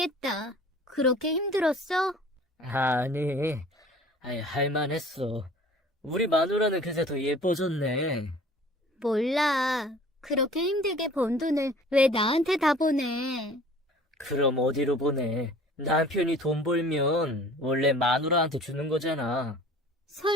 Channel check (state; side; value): normal; both; correlation 0.48